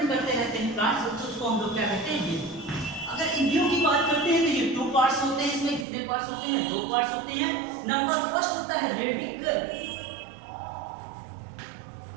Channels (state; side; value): drops out; left; at 5.9 s